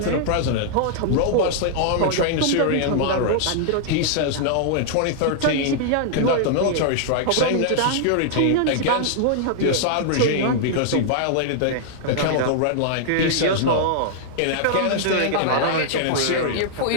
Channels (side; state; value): both; different; correlation -0.01